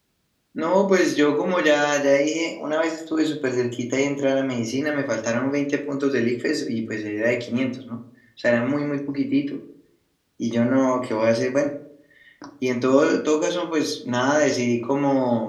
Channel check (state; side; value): identical; both; correlation 1.00